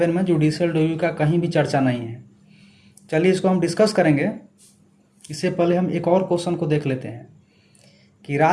में जुडिशियल रिव्यू का कहीं भी चर्चा नहीं है। चलिए इसको हम डिस्कस करेंगे। इससे पहले हम एक और क्वेश्चन को देख लेते हैं कि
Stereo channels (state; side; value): identical; both; correlation 1.00